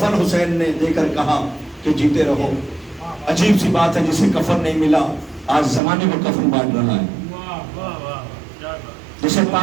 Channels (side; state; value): left; drops out; at 5.8 s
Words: حسین نے دے کر کہا کہ جیتے رہو. عجیب سی بات ہے, جسے کفن نہیں ملا آج زمانے میں کفن بانٹ رہا ہے. جسے